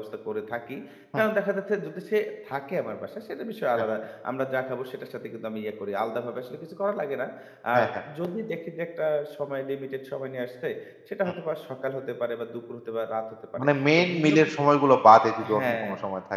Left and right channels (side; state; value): both; identical; correlation 1.00